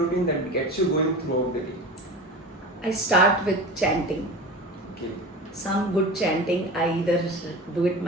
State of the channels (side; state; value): both; normal; correlation 0.31